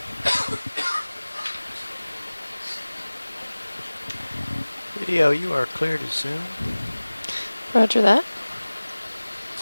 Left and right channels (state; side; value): inverted; both; correlation -1.00